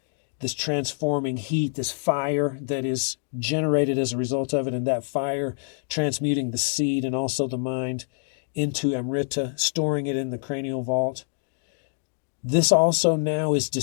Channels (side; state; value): right; silent; digital silence